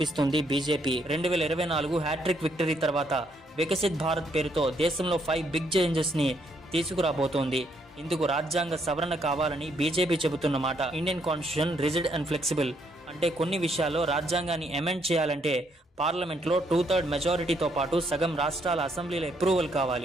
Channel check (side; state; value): both; normal; correlation 0.72